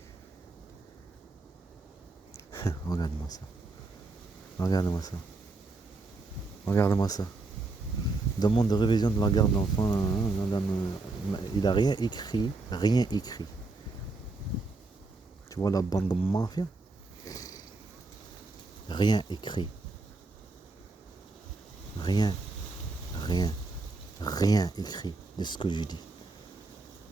Regarde-moi ça. Regarde-moi ça. Regarde-moi ça. Demande de révision de la garde d'enfant. Il a rien écrit. Rien écrit. Tu vois la bande de mafia? Rien écrit. Rien. Rien. Rien écrit de ce que je dis.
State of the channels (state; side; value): quieter; left; 3.4 dB